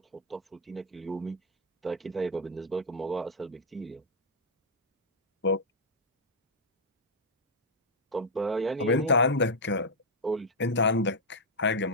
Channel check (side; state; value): both; normal; correlation -0.03